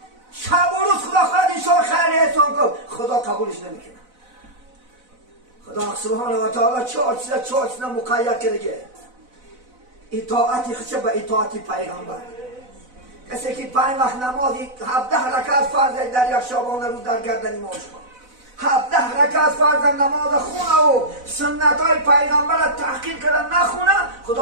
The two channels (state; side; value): late; left; 4.0 ms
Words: شب و روز خدا خواهد انشاءالله خیر احسان کن، خدا قبولش نمیکنه. خدا سبحانه و تعالی چهار چیزا مقید کرده. اطاعتی خشه به اطاعتی پیغمبر. کسی که 5 وقت نمازی 17 رکعت فرض در یک شبانه روز در گردن ما شما 17 رکعت فرض نماز خونه و سنت های پیغمبر را تحقیر کردن نخونه،